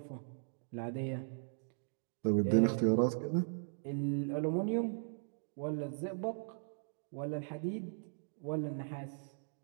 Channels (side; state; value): left; silent; digital silence